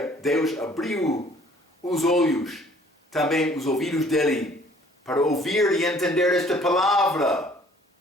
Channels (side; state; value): both; normal; correlation 0.57